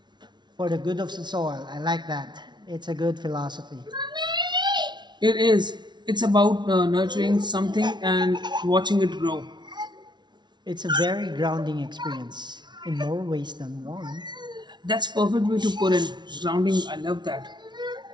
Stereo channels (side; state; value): left; late; 0.21 ms